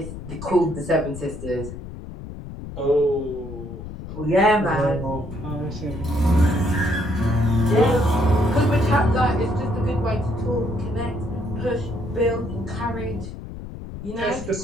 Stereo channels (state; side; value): noise; left; rumble, 10 dB below the sound